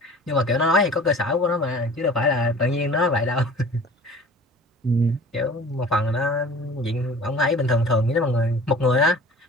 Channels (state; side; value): normal; both; correlation 0.44